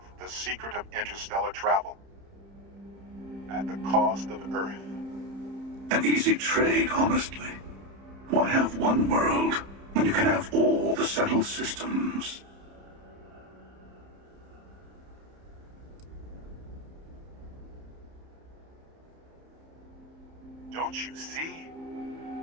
the secret of interstellar travel. At the cost of Earth. An easy trade, honestly. Why have one world when you can have all the settled systems? Don't you see?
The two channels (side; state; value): left; late; 30 ms